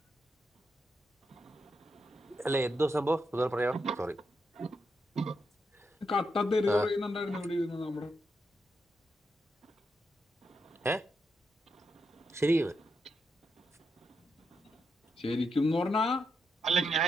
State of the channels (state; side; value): normal; both; correlation 0.83